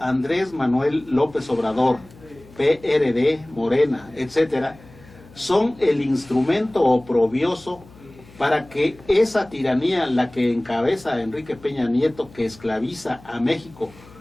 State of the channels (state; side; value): noise; left; hum, 23 dB below the sound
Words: Manuel López Obrador, PRD, Morena, etcétera, son el instrumento oprobioso para que esa tiranía, la que encabeza Enrique Peña Nieto, que esclaviza a México,